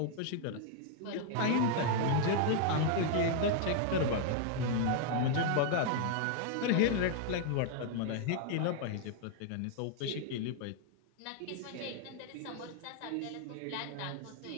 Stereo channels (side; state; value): both; different; correlation 0.00